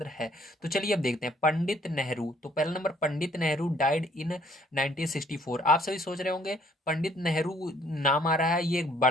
है। तो चलिए अब देखते हैं। पंडित नेहरू, तो पहला number, Pandit Nehru died in 1964। आप सभी सोच रहे होंगे पंडित नेहरू नाम आ रहा है, ये एक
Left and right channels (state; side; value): normal; both; correlation 0.63